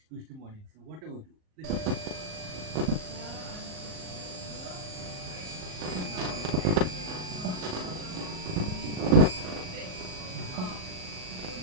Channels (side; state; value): left; late; 38 ms